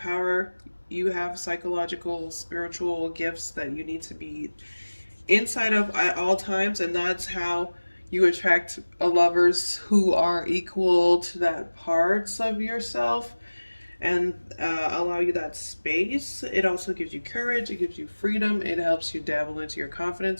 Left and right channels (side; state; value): both; inverted; correlation -1.00